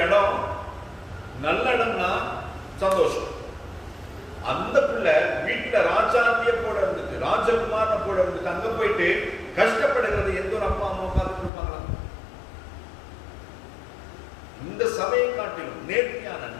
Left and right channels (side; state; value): right; drops out; at 11.5 s